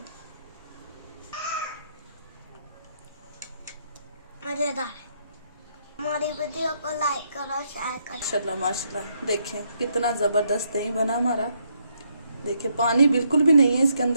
मजेदार है। हमारी वीडियो को लाइक करो, शेयर करो। माशाल्लाह माशाल्लाह, देखें कितना जबरदस्त दही बना हमारा। देखिए पानी बिल्कुल भी नहीं है इसके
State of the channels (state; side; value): inverted; both; correlation -0.75